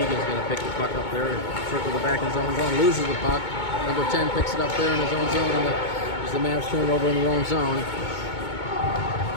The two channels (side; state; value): right; late; 2.2 ms